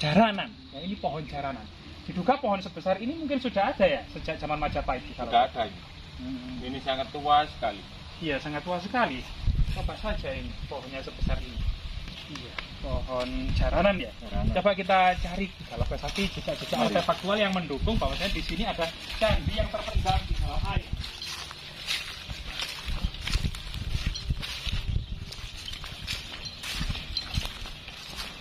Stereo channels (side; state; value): both; identical; correlation 1.00